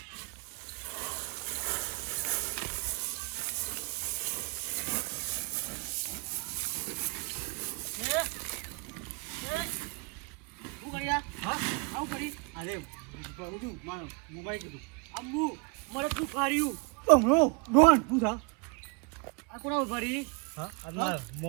બમણો ડોન તું થા આ કોના ભરી હા આ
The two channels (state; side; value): quieter; left; 31.3 dB